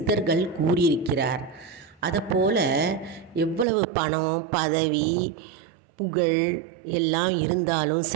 கூறியிருக்கிறார். அதைப்போல் எவ்வளவு பணம், பதவி, புகழ் எல்லாம் இருந்தாலும்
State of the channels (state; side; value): drops out; left; at 3.7 s